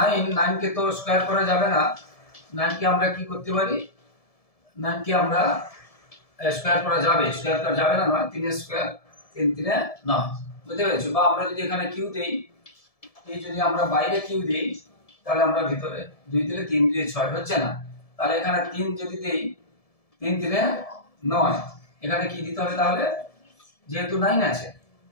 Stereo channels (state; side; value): late; right; 1.7 ms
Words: কে তো স্কয়ার করা যাবে না। 9 কে আমরা কি করতে পারি? 9 কে আমরা স্কয়ার করা যাবে, স্কয়ার করা যাবে না নয়, 3 স্কয়ার 3 3 9 বুঝতে পেরেছো? বা আমরা যদি এখানে কিউ দেই, এই যদি আমরা বাইরে কিউ দেই তাহলে আমরা ভিতরে 2 দিলে 3 2 6 হচ্ছে না। তাহলে এখানে 3 যদি দেই 3 3 9, এখানে কি দিতে হবে তাহলে? যেহেতু 9 আছে